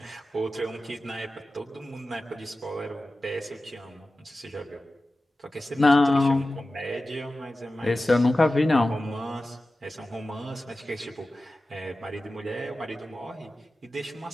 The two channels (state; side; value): normal; both; correlation 0.95